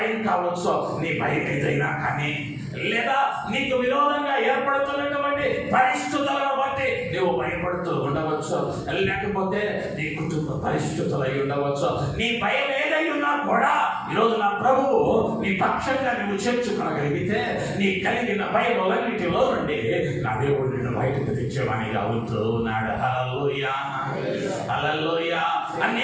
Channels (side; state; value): both; identical; correlation 1.00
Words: కావచ్చు. నీ భయం ఏదైనా కానీ, లేదా నీకు విరోధంగా ఏర్పడుతున్నటువంటి పరిస్థితులను బట్టి నువ్వు భయపడుతూ ఉండవచ్చు, లేకపోతే నీ కుటుంబ పరిస్థితులు అయి ఉండవచ్చు. నీ భయం ఏదై ఉన్నా కూడా ఈరోజు నా ప్రభువు నీ పక్షంగా నువ్వు చేర్చుకోగలిగితే, నీ కలిగిన భయములన్నిటిలో నుండి నా దేవుడు నిన్ను బయటకు తెచ్చేవానిగా అవుతూ ఉన్నాడు. హల్లెలూయా, హల్లెలూయా.